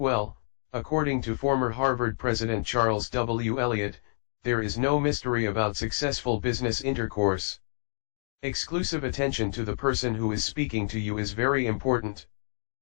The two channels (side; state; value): right; silent; digital silence